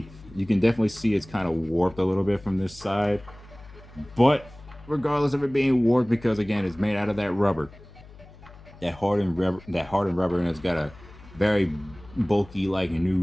You can definitely see it's kind of warped a little bit from this side, but regardless of it being warped, because again, it's made out of that rubber, that hardened rubber, and it's got a very bulky like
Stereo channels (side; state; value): left; noise; hum, 21 dB below the sound